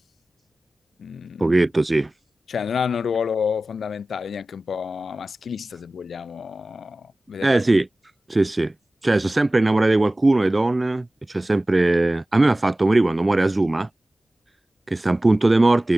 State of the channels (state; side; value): normal; both; correlation 0.97